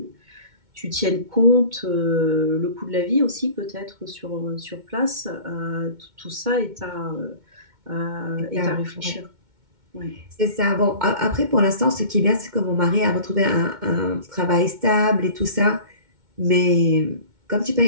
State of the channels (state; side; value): late; left; 2.2 ms